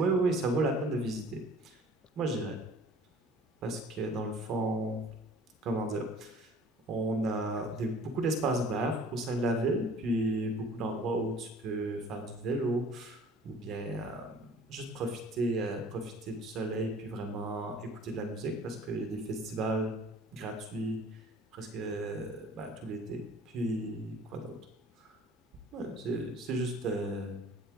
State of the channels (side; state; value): both; normal; correlation 0.50